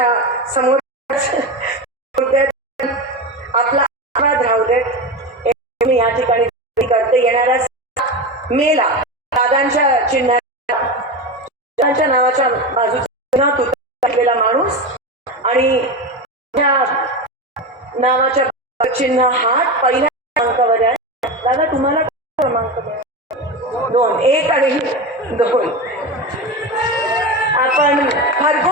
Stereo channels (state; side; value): normal; both; correlation 0.21